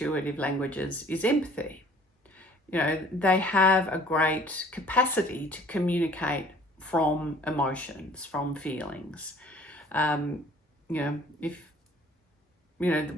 languages is empathy. You know, they have a great capacity to communicate from emotions, from feelings. You know, if, you know,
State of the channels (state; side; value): normal; both; correlation 0.53